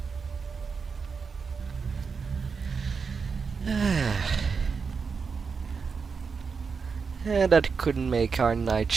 And that could make our night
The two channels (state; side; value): quieter; left; 5.4 dB